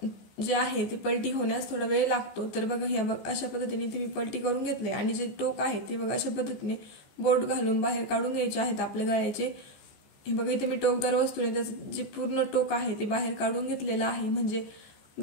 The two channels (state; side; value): late; right; 14 ms